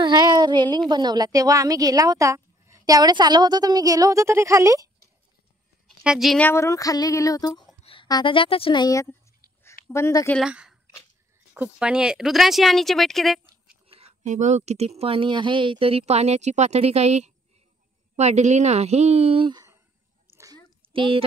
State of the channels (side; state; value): both; normal; correlation 0.63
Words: रेलिंग बनवला तेव्हा आम्ही गेला होता. त्यावेळेस आलो होतो तर मी गेलो होतो तरी खाली ह्या जिन्यावरून खाली गेलो होतो. आता जातच नाही आहेत. बंद केला. खूप पाणी आहे. रुद्रांशी हा नीचे बैठ के देख. हे बघ किती पाणी आहे. तरी पाण्याची पातळी काही वाढली नाही.